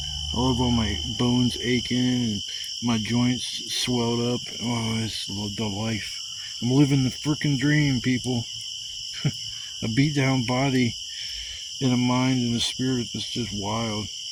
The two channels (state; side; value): identical; both; correlation 1.00